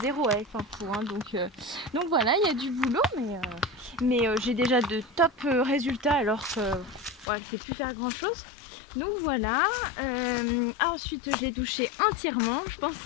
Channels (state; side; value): drops out; right; at 7.2 s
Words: avec Pimpou, hein, donc voilà, il y a du boulot, mais j'ai déjà de top résultats alors que voilà, je ne sais plus faire grand chose. Donc voilà, ensuite j'ai douché entièrement, je pense